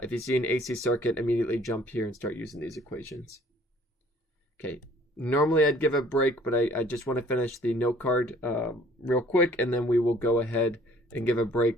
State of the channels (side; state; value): both; normal; correlation 0.56